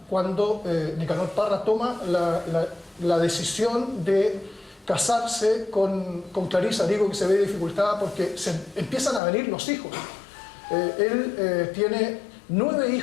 cuando Nicanor Parra toma la decisión de casarse con Clarisa. Digo que se ve dificultada porque se empiezan a venir los hijos. Él tiene 9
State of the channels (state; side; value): drops out; right; at 9.2 s